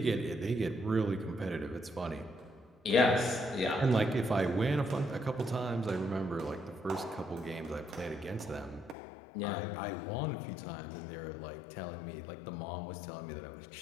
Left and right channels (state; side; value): drops out; right; at 9.0 s